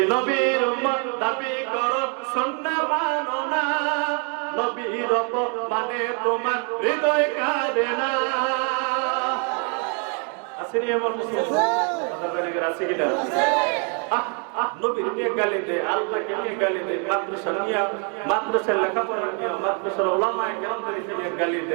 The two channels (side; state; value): left; quieter; 38.4 dB